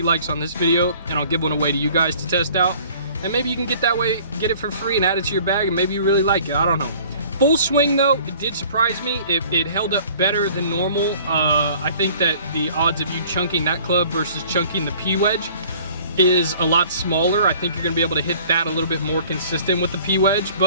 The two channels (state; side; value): inverted; both; correlation -0.51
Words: likes on this video, and I'll give one away to you guys to test out. And maybe you can get it for free and add it to your bag, and maybe you really like it, I don't know. Full swing though, it did surprise me. It held up better than normal. I think that the odds of you chunking that club versus chunking the P wedge is a lot smaller. I think you're gonna be able to hit that a little bit more consistent with the P wedge,